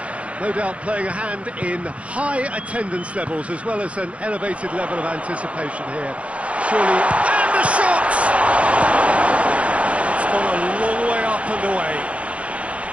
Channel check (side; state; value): left; late; 0.063 ms